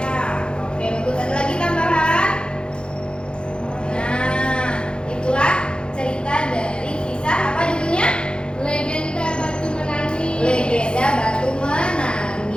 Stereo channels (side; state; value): right; late; 0.052 ms